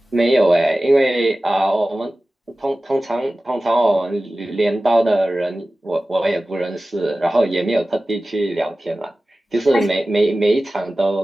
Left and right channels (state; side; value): normal; both; correlation 0.96